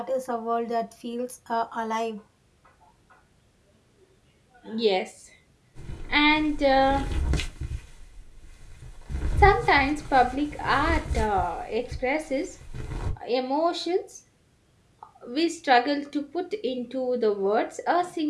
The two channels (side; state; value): both; identical; correlation 1.00